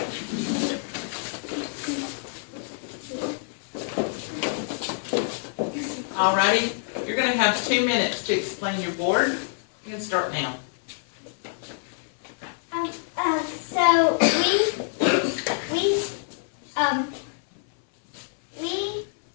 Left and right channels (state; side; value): silent; right; 58 dB below the other